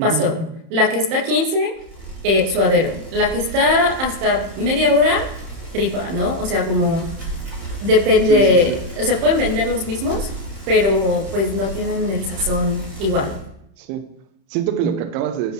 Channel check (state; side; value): late; left; 31 ms